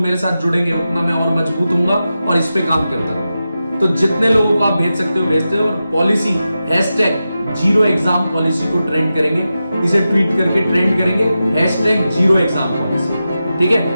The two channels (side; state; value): both; inverted; correlation -0.91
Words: मेरे साथ जुड़ेंगे उतना मैं और मजबूत होऊंगा और इस पे काम करता रहूंगा। तो जितने लोगों को आप भेज सकते हो भेजते हो। और पॉलिसी #0 एग्जाम पॉलिसी को ट्रेंड करेंगे, इसे ट्वीट करके ट्रेंड करेंगे #0 एग्जाम पॉलिसी। ठीक